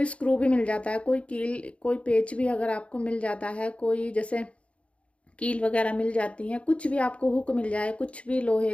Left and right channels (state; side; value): late; right; 0.061 ms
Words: स्क्रू भी मिल जाता है, कोई कील, कोई पेच भी अगर आपको मिल जाता है, कोई जैसे कील वगैरह मिल जाती हैं, कुछ भी आपको हुक मिल जाए, कुछ भी लोहे